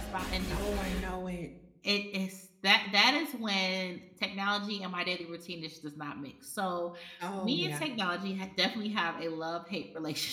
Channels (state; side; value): identical; both; correlation 1.00